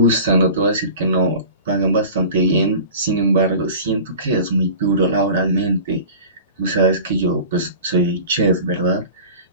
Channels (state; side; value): inverted; both; correlation -0.39